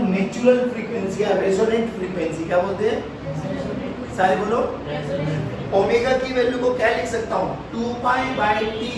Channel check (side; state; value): both; identical; correlation 1.00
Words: नेचुरल फ्रीक्वेंसी या रेजोनेंट फ्रीक्वेंसी। क्या बोलते हैं? सारे बोलो। ओमेगा की वैल्यू को क्या लिख सकता हूँ 2 पाई बाई टी,